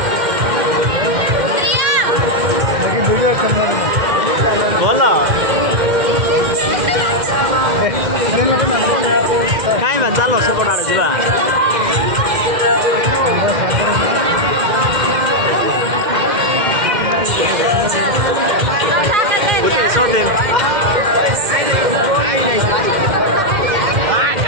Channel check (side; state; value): left; late; 2.1 ms